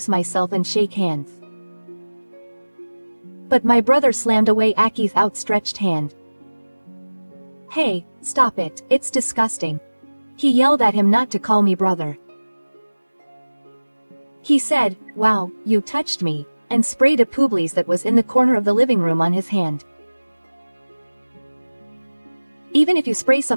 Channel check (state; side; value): inverted; both; correlation -1.00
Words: myself and shake hands. But my brother slammed away Aki's outstretched hand. Hey, stop it, it's disgusting. He yelled at him not to call me brother. He said, "Wow, you touched me," and sprayed a Publis that was in the corner of the living room on his hand. Even if you spray